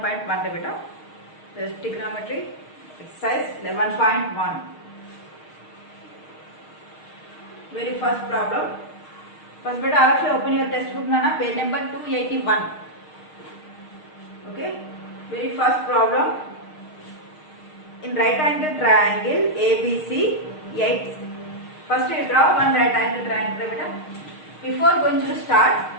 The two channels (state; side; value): late; right; 6.5 ms